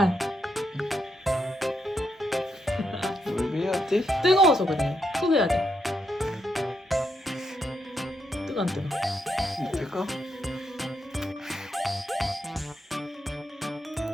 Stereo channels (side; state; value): both; normal; correlation 0.80